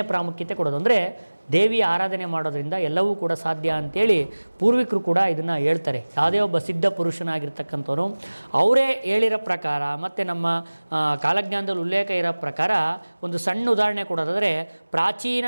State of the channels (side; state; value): both; inverted; correlation -1.00